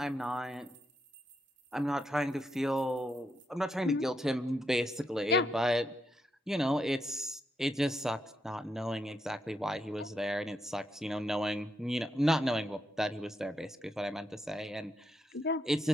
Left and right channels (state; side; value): normal; both; correlation 0.81